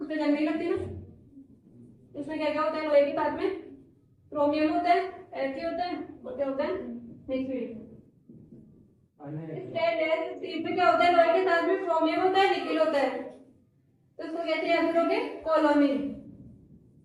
जंग नहीं लगती ना, इसमें क्या क्या होता है लोहे के साथ में क्रोमियम होता है, ऐसे होता है और क्या होता है निकेल। स्टेनलेस स्टील में क्या होता है लोहे के साथ में क्रोमियम होता है निकेल होता है, तो इसको कैसे याद करोगे कोलोमिन।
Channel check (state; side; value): identical; both; correlation 1.00